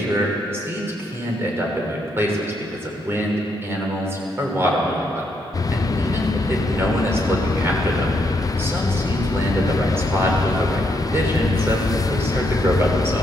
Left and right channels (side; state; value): both; normal; correlation 0.76